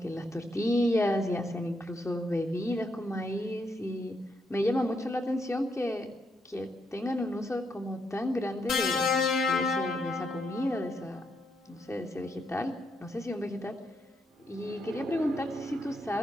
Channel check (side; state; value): both; normal; correlation 0.78